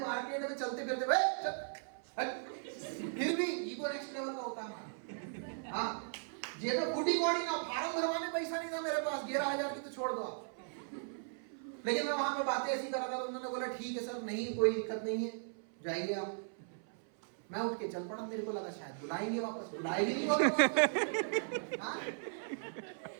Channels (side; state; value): left; silent; 53 dB below the other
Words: में चलते फिरते फिर भी ईगो नेक्स्ट लेवल का होता है हमारा। हाँ, जेब में फूटी कौड़ी ना, फार्म भरवाने पैसा नहीं था मेरे पास, 11,000 की तो छोड़ दो आप। लेकिन मैं वहां पे बातें ऐसी कर रहा था, तो उन्होंने बोला ठीक है सर, नहीं कोई दिक्कत नहीं है, जाइए आप। मैं उठ के चल पड़ा, मेरे को लगा शायद बुलाएंगे वापस, बुलाएंगे नहीं वापस। हाँ,